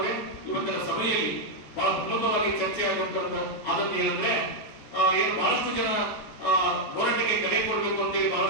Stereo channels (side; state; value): right; late; 14 ms